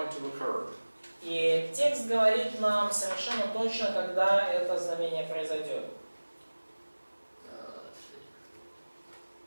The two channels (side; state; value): both; inverted; correlation -1.00